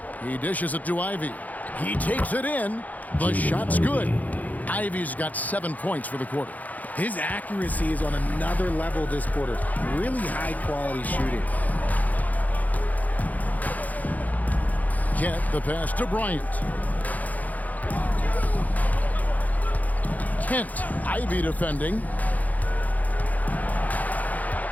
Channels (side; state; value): right; late; 0.079 ms